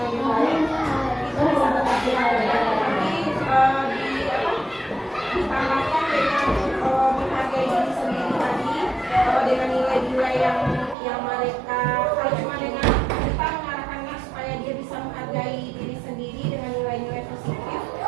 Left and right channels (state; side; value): drops out; left; at 11.0 s